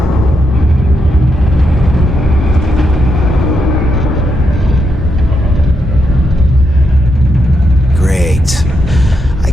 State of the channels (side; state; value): both; normal; correlation 0.82